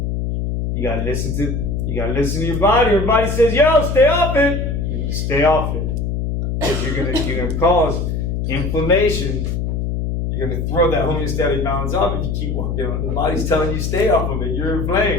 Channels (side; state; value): left; noise; hum, 1 dB below the sound